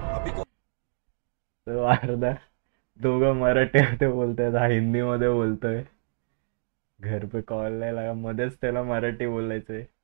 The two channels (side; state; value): left; silent; digital silence